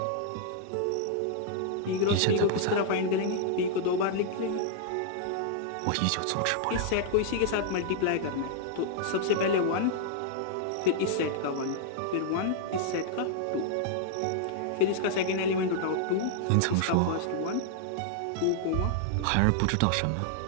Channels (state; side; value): different; both; correlation -0.01